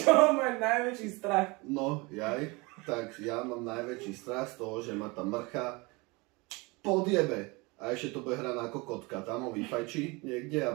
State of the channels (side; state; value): left; quieter; 25.9 dB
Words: čoho máš najväčší strach? No, tak ja mám najväčší strach z toho, že ma tá mrcha podjebe. A ešte to bude hrať ako kotka, tam ho vyfajčí niekde